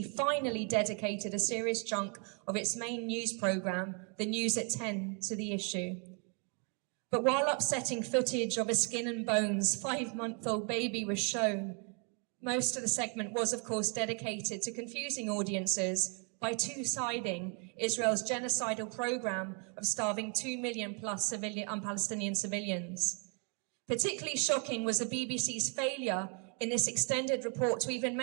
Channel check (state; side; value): quieter; left; 35.2 dB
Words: finally dedicated a serious chunk of its main news programme, The News at 10, to the issue. But while upsetting footage of a skin and bones 5-month-old baby was shown, most of the segment was, of course, dedicated to confusing audiences by two-siding Israel's genocidal program of starving 2 million plus Palestinian civilians. Particularly shocking was the BBC's failure in this extended report to even